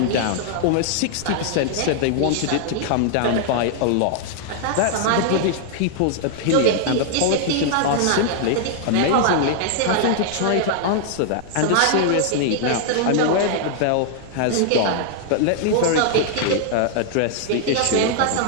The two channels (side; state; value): both; different; correlation -0.01